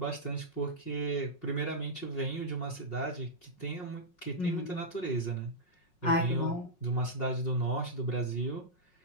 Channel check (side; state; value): right; late; 5.5 ms